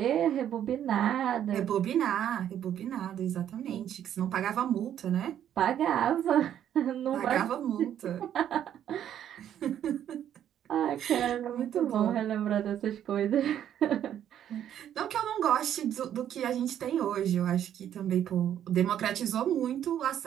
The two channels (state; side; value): quieter; left; 10.3 dB